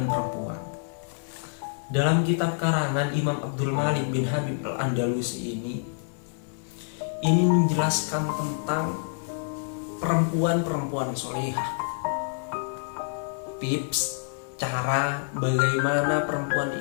perempuan. Dalam kitab karangan Imam Abdul Malik bin Habib Al-Andalusi ini menjelaskan tentang perempuan-perempuan solehah. Tips cara bagaimana perempuan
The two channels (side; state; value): right; silent; 59 dB below the other